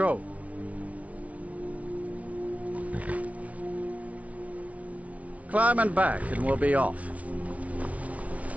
Climb and back and we'll be off.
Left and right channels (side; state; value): left; late; 0.067 ms